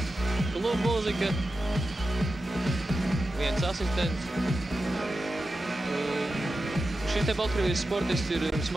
klubu mūzika. Viens asistents. Šī te Baltkrievijas sportists ir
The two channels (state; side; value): normal; both; correlation 0.91